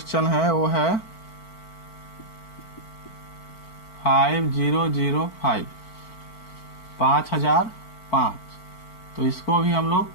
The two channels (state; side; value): late; right; 4.5 ms